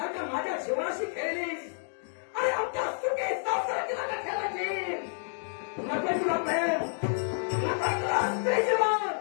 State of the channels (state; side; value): silent; right; digital silence